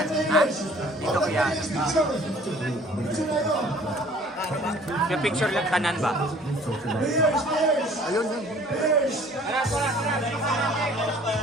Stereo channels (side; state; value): both; normal; correlation 0.53